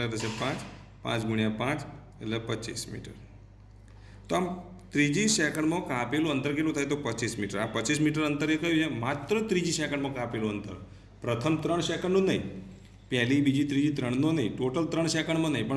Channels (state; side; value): identical; both; correlation 1.00